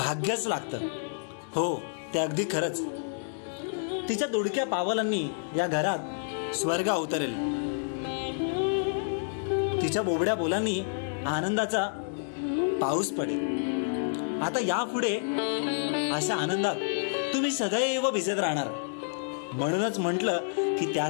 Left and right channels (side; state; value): right; silent; digital silence